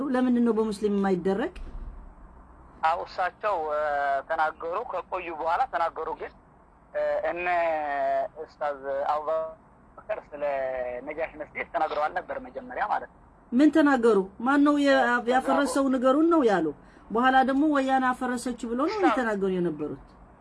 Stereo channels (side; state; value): both; identical; correlation 1.00